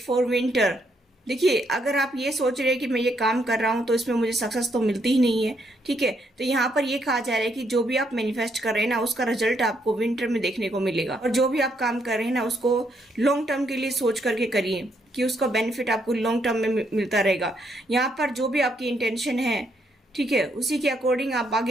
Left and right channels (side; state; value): both; normal; correlation 0.75